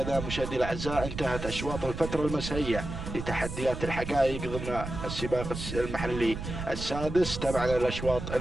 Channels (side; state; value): right; noise; rumble, 7 dB below the sound